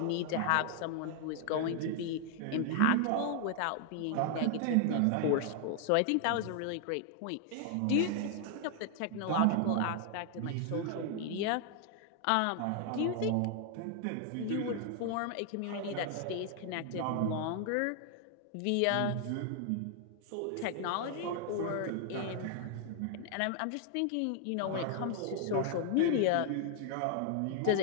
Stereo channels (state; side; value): different; both; correlation 0.00